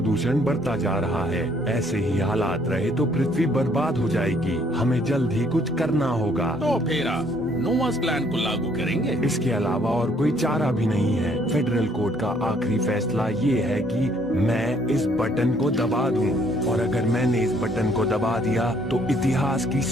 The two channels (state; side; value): normal; both; correlation 0.64